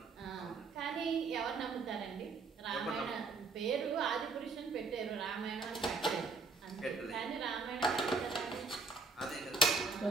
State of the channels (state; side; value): quieter; left; 4.2 dB